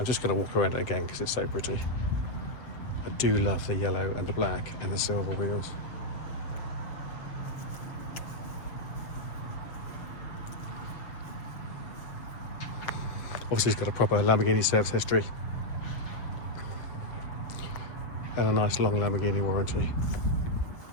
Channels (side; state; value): right; late; 7.2 ms